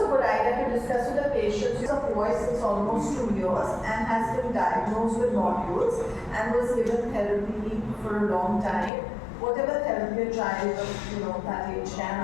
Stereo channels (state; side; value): drops out; right; at 8.9 s